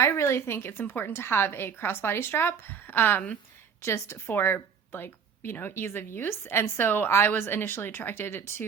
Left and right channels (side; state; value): left; quieter; 6.8 dB